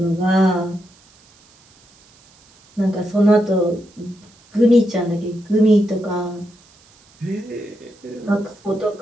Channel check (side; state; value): right; noise; hiss, 30 dB below the sound